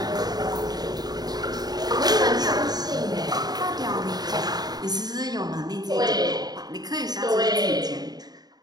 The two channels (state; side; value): late; left; 0.19 ms